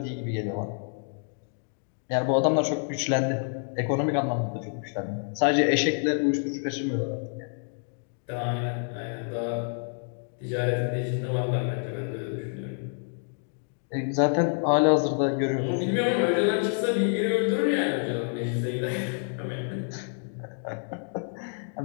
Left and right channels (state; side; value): silent; right; 56 dB below the other